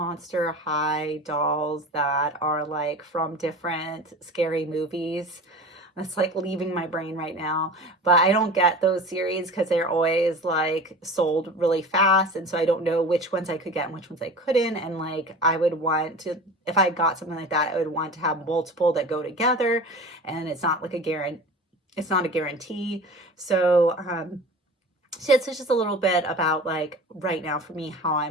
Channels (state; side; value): normal; both; correlation 0.36